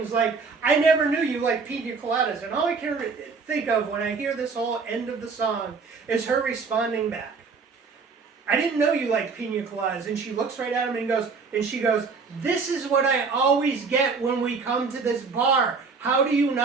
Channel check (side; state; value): left; quieter; 4.8 dB